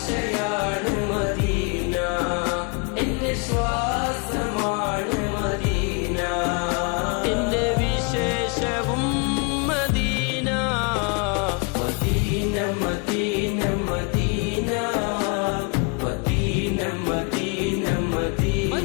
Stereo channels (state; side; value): quieter; right; 33.8 dB